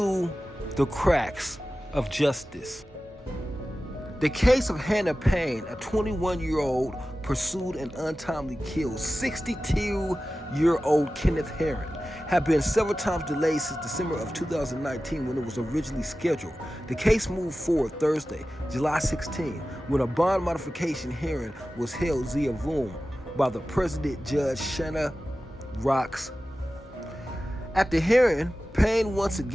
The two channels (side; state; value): both; normal; correlation 0.95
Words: the cracks of justice. The case of Hannah Payne, a 21-year-old pursued and untimely killed 62-year-old Kenneth Heron, had been several times delayed since December of 2019 when it was originally scheduled. The case moved forward Thursday, July 16, when a bond modification hearing was held via Zoom by the President Judge Shanna Rocks. At the hearing, Payne once